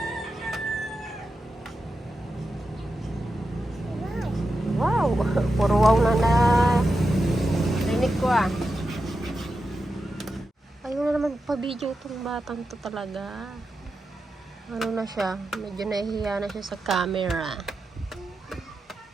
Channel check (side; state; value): both; normal; correlation 0.89